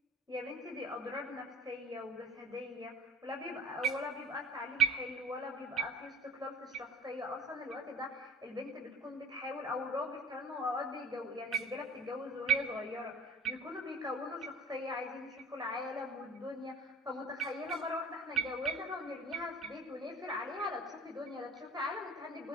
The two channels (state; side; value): normal; both; correlation 0.43